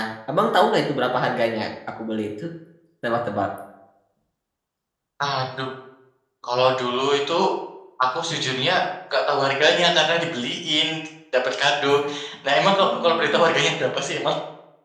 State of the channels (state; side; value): identical; both; correlation 1.00